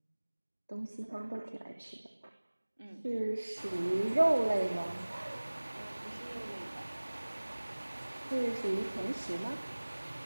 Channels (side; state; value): both; inverted; correlation -1.00